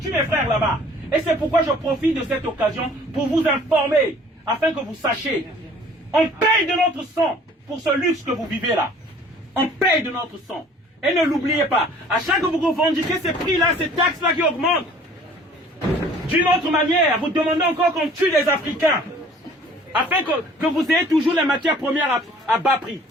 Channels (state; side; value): normal; both; correlation 0.52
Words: mes frères là-bas? Et c'est pourquoi je profite de cette occasion pour vous informer, afin que vous sachiez. On paye de notre sang pour ce luxe que vous vivez là. On paye de notre sang. Et ne l'oubliez pas, à chaque fois que vous revendiquez ces prix-là, ces taxes-là qui augmentent, d'une autre manière, vous demandez encore qu'on tue les Africains, afin que vous ayez toujours les matières premières à bas prix.